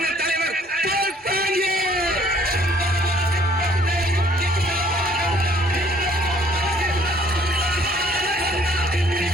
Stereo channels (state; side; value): normal; both; correlation 0.59